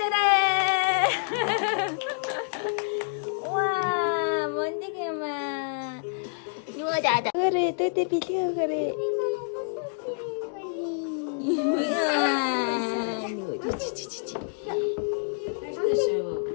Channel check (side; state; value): right; silent; digital silence